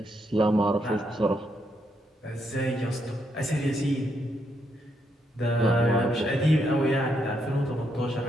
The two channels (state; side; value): normal; both; correlation 0.78